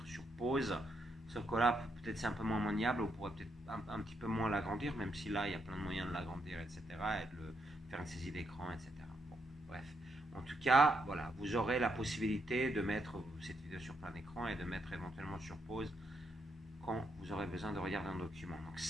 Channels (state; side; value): normal; both; correlation 0.78